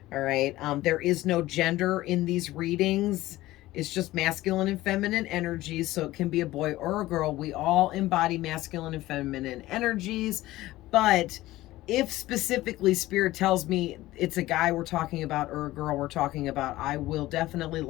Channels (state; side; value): quieter; right; 16.9 dB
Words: All right. There is no gender in these readings. It's just masculine and feminine energies. So it can be a boy or a girl. We all embody masculine and feminine energies. But if specifically spirit tells me it's a guy we're talking about or a girl we're talking about, I will definitely